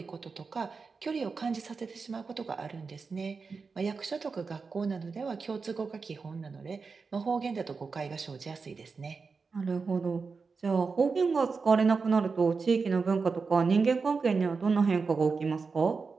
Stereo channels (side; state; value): left; quieter; 4.8 dB